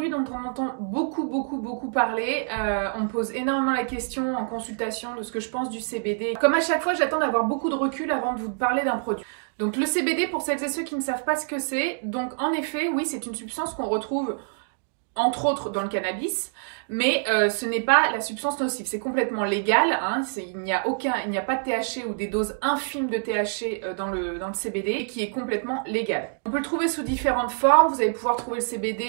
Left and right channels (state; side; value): silent; left; digital silence